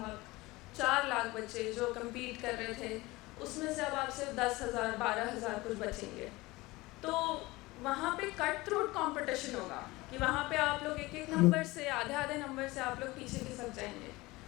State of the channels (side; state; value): right; quieter; 21.0 dB